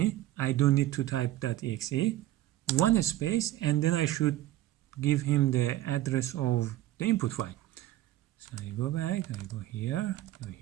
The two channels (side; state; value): left; quieter; 14.5 dB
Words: I don't need to type .exe, one space, and then I should give him the address of the input file. So I go back, I go here,